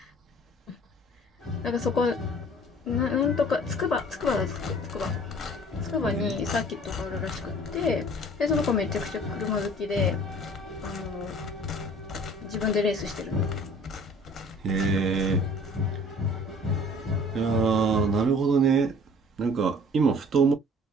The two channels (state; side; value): normal; both; correlation 0.50